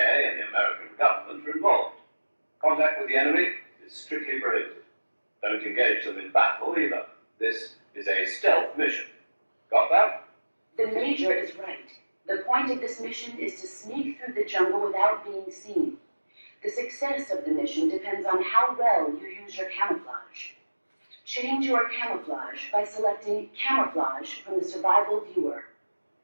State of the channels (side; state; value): both; inverted; correlation -1.00